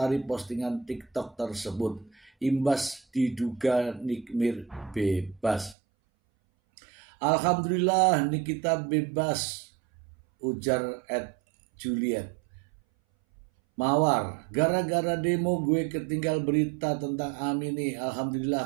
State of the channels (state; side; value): drops out; left; at 5.8 s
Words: postingan TikTok tersebut. Imbas diduga Nikmir bebas. Alhamdulillah Nikita bebas, ujar Juliet. Mawar, gara-gara demo gue ketinggal berita tentang Ami nih.